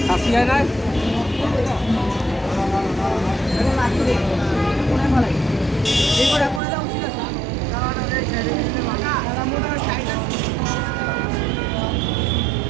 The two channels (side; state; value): left; drops out; at 6.6 s